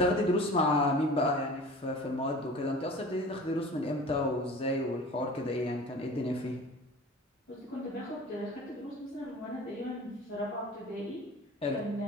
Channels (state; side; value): normal; both; correlation 0.41